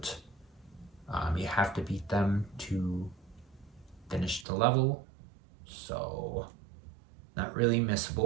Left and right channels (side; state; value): left; drops out; at 4.5 s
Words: You have to beat them to finish the level, so not really